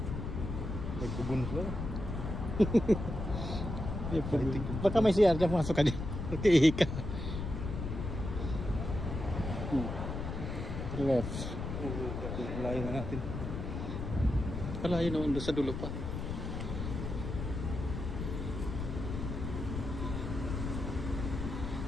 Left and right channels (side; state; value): left; noise; rumble, 5 dB below the sound